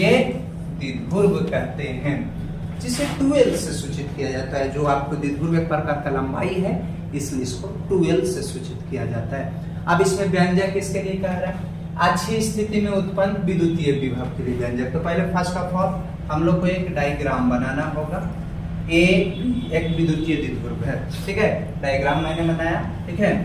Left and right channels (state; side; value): identical; both; correlation 1.00